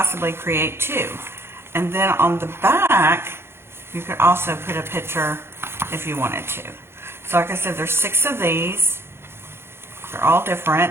create 2. And then on the back, you could also put a picture if you wanted to. So like I said, there's 6 of these. They're all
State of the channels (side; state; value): left; late; 0.12 ms